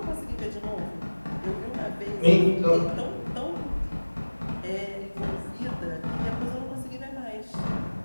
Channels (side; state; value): both; inverted; correlation -1.00